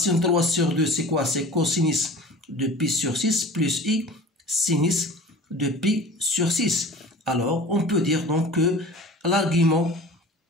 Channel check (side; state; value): both; normal; correlation 0.40